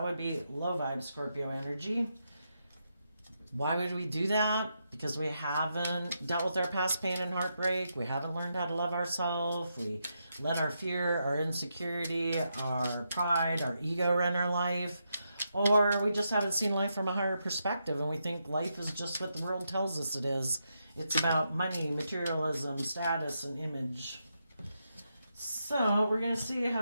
would be low vibe Scorpio energy. Why would we do that? Because we haven't dealt with our past pain and heartbreak. We haven't learned how to love ourselves. We let our fear, our insecurity, our pride, our ego run our life. Or we just haven't seen life from a higher perspective and we think life is just what the world tells us it is. It's about money, materialism, status, and image. So we're going to see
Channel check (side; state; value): both; inverted; correlation -0.83